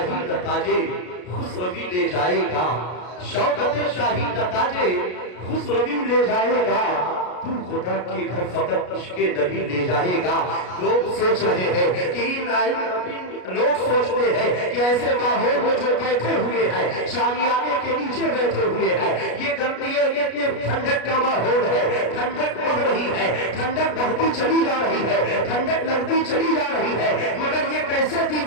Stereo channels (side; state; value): right; late; 33 ms